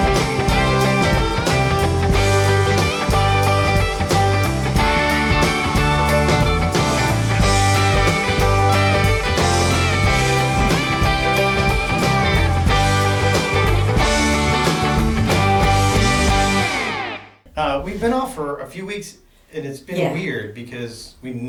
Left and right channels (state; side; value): identical; both; correlation 1.00